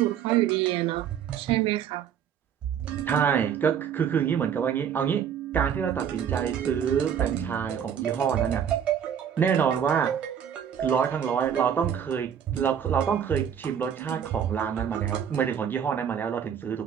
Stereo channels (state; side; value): quieter; left; 8.5 dB